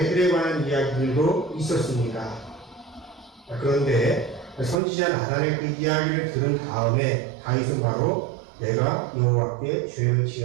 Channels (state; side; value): drops out; left; at 4.8 s